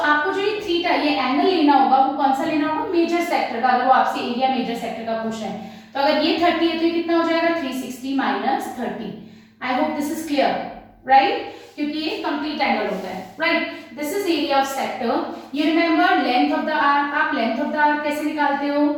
आपको जो ये थीटा, ये angle लेना होगा, वो कौन सा लेना होगा? मेजर सेक्टर का. अगर वो आपसे एरिया मेजर सेक्टर का पूछ रहे हैं तो अगर ये 30 है तो ये कितना हो जाएगा? 360 minus 30. I hope this is clear, right? क्योंकि ये कंप्लीट एंगल होता है, right? This is area of sector. You remember length of the arc. आप लेंथ ऑफ द आर्क कैसे निकालते हो?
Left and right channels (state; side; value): identical; both; correlation 1.00